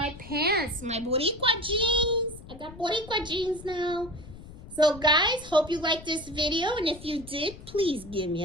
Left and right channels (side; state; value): left; noise; rumble, 16 dB below the sound